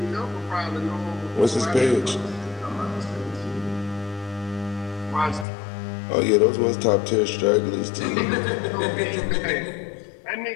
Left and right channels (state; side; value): drops out; right; at 5.5 s